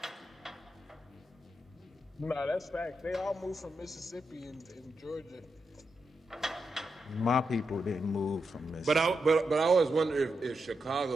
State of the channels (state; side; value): normal; both; correlation 0.86